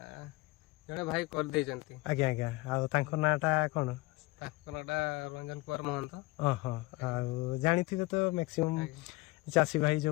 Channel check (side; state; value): right; quieter; 22.0 dB